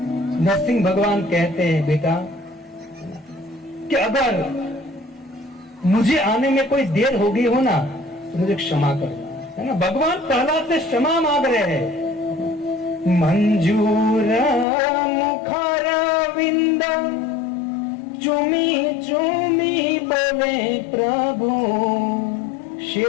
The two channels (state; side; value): drops out; right; at 14.7 s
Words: नरसिंह भगवान कहते हैं बेटा कि अगर मुझे आने में कोई देर हो गई हो ना तो मुझे क्षमा कर, है ना। भगवान प्रहलाद से क्षमा मांग रहे हैं। मंजूर मुखार विंद चुमी चुमी बोले प्रभु।